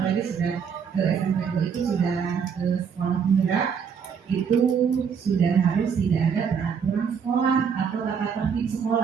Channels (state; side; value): quieter; left; 6.7 dB